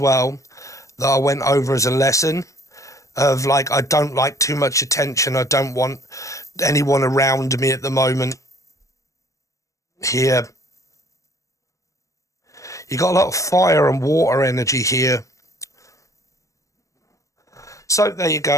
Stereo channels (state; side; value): late; right; 0.15 ms